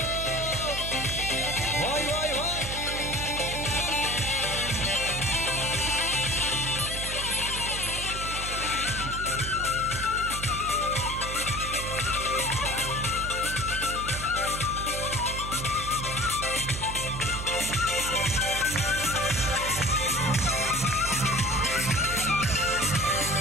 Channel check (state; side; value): noise; right; hum, 7 dB below the sound